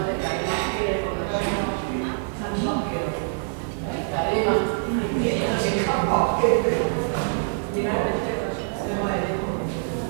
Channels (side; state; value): left; silent; 62 dB below the other